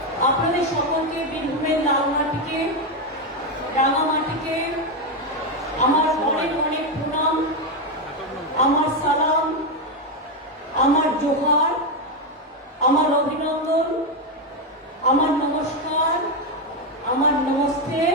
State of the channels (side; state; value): both; normal; correlation 0.07